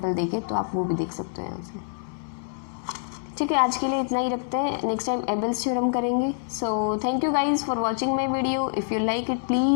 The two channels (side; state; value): right; silent; digital silence